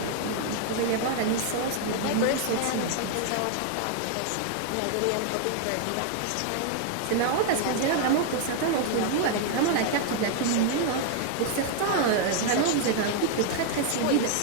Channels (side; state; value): both; different; correlation 0.00